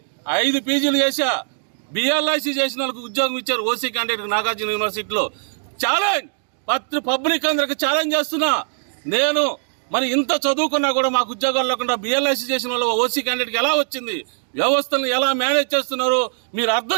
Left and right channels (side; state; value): left; silent; digital silence